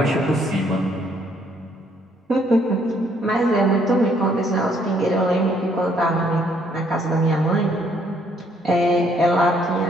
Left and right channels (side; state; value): both; normal; correlation 0.67